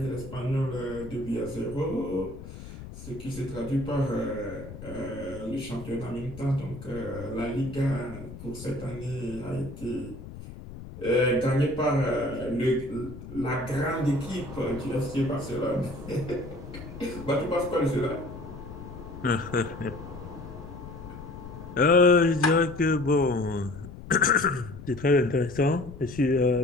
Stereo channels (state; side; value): noise; left; rumble, 13 dB below the sound